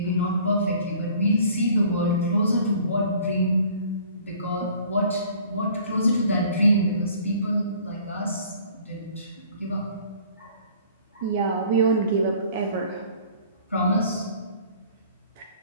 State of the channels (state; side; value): inverted; both; correlation -0.52